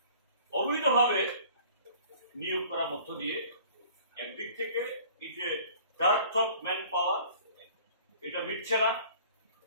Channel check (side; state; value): both; inverted; correlation -0.50